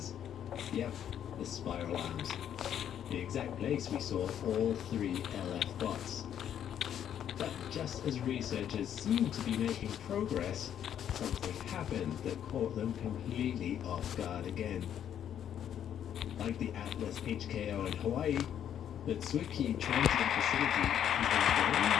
Yep, the spiral arms. The exact place we saw all 3 LF bots. But just as researchers seemed to be making progress, something happened that caught them completely off guard again. Like the Atlas HKO in Hawaii, the Tsuki Transit Facility is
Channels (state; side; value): quieter; right; 9.7 dB